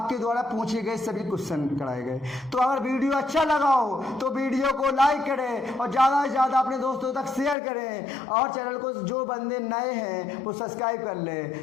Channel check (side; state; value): right; drops out; at 7.6 s